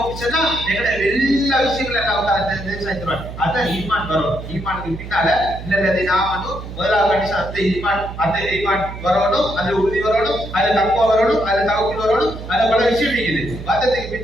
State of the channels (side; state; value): right; noise; hum, 11 dB below the sound